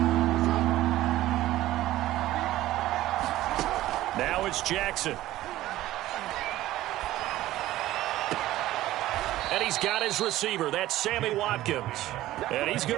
Now it's Jackson. And he's got his receiver. That's Sammy Watkins. And he's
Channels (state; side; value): quieter; left; 15.4 dB